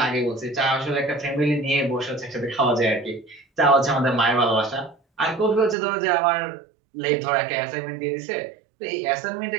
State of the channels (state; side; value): drops out; left; at 5.8 s